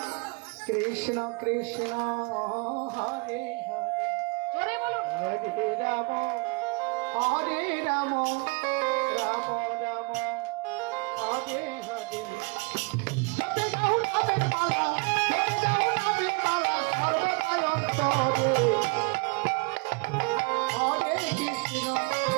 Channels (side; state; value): left; quieter; 30.4 dB